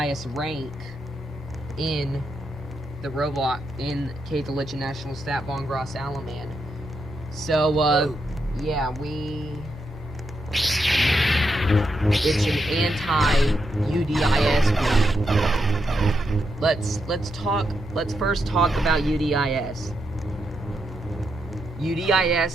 rank in the Roblox in Kaiserlichen Nationalstaat von Gross Allemand. So, yeah, it's an anti-UDIS group. Let's first talk about UDIS.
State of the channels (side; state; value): both; normal; correlation 0.83